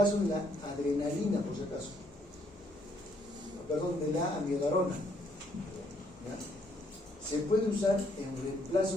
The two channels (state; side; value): normal; both; correlation 0.69